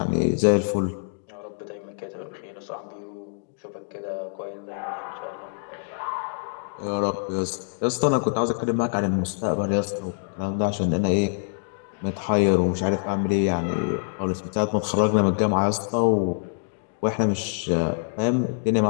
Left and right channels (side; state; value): right; silent; digital silence